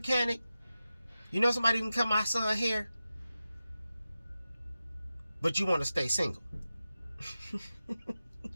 You know somebody who can cut my son's hair? But you want to stay single.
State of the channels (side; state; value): both; inverted; correlation -0.93